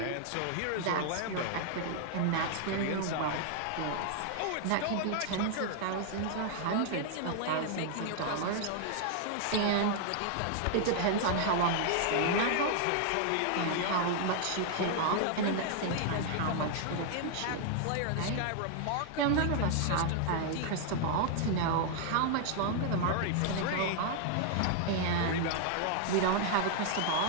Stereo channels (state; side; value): different; both; correlation 0.00